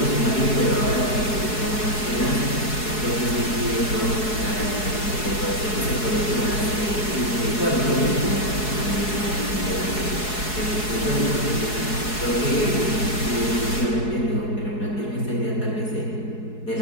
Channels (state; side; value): late; right; 4.7 ms